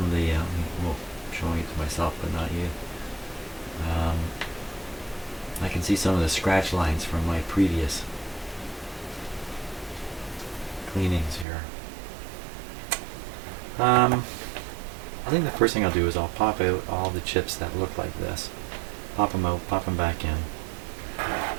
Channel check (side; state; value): left; drops out; at 11.5 s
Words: of the, well, I'm showing it to myself but not you. I can see some of the scratch lines from my previous cleanings here. I think the first thing I'll do is I'll pop out all the chips that look like this. Pop them out, pop them back in.